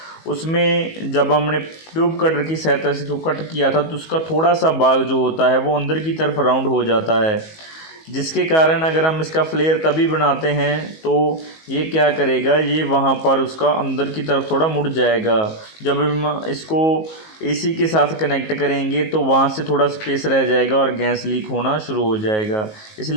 उसमें जब हमने ट्यूब कटर की सहायता से इसको कट किया था तो उसका थोड़ा सा भाग जो होता है वो अंदर की तरफ राउंड हो जाता है, जिसके कारण अगर हम इसका फ्लेयर तभी बनाते हैं तो ये क्या करेगा, ये वहाँ पर उसका अंदर की तरफ थोड़ा मुड़ जाएगा। जब हम इसको एसी के साथ कनेक्ट करेंगे तो वहाँ से थोड़ा स्पेस रह जाएगा और गैस लीक होना शुरू हो जाएगा।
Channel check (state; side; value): late; right; 19 ms